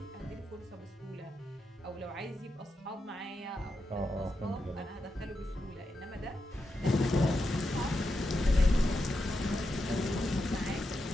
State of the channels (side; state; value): both; normal; correlation 0.86